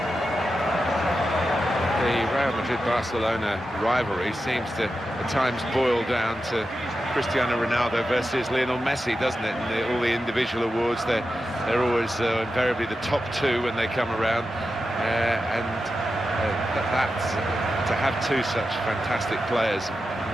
The Real Madrid-Barcelona rivalry seems to at times boil down to Cristiano Ronaldo versus Lionel Messi, doesn't it? And all the individual awards, they're always invariably the top two when they come around, to have two such fantastic players,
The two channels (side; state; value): both; normal; correlation 0.90